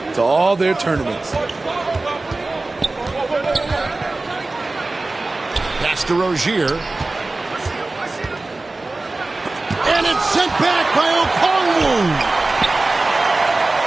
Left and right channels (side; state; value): left; quieter; 3.2 dB